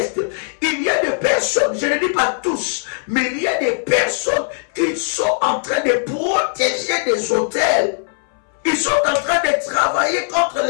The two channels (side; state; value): right; silent; 64 dB below the other